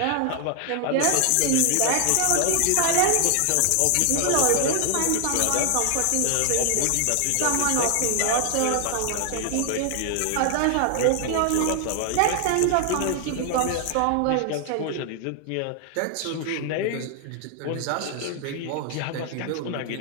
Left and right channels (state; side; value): different; both; correlation 0.00